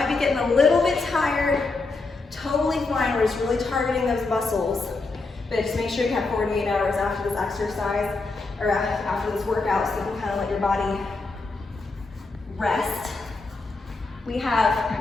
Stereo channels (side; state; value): right; quieter; 3.6 dB